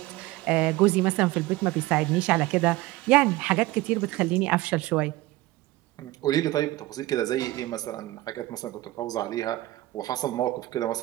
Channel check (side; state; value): left; quieter; 18.0 dB